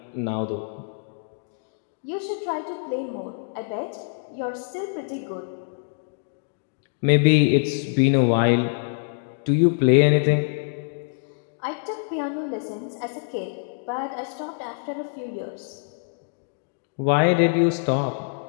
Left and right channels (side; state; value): right; silent; digital silence